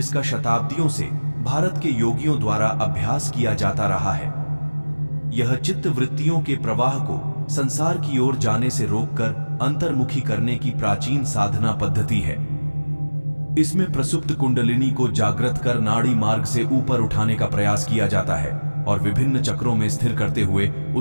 शताब्दियों से भारत के योगियों द्वारा अभ्यास किया जाता रहा है। यह चित्त वृत्तियों के प्रवाह को संसार की ओर जाने से रोककर अंतर्मुखी करने की प्राचीन साधना पद्धति है। इसमें प्रसुप्त कुंडलिनी को जागृत कर नाड़ी मार्ग से ऊपर उठाने का प्रयास किया जाता है और विभिन्न चक्रों में स्थिर करते हुए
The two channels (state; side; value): inverted; both; correlation -1.00